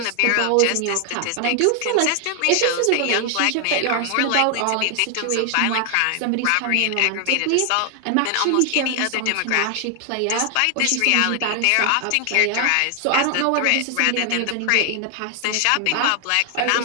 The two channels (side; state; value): both; different; correlation 0.00